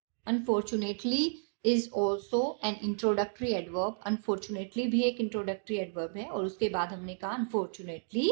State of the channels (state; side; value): silent; left; digital silence